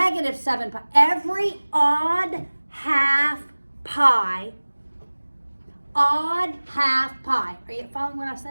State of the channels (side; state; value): both; inverted; correlation -1.00